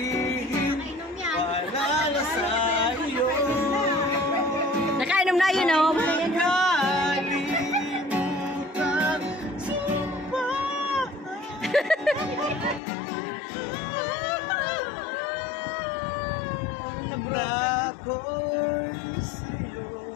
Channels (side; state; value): right; drops out; at 12.8 s